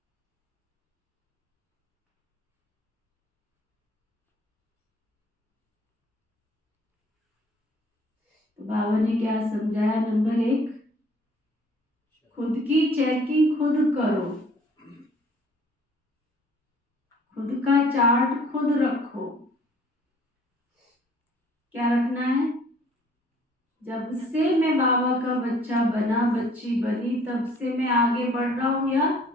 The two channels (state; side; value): normal; both; correlation 0.56